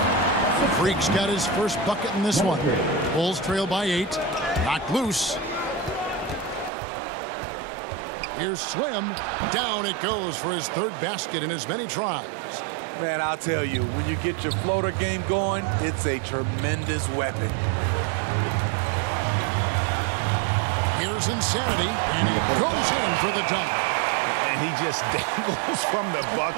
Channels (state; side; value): drops out; left; at 6.7 s